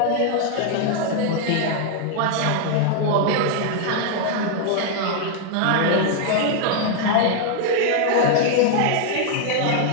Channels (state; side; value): different; both; correlation 0.00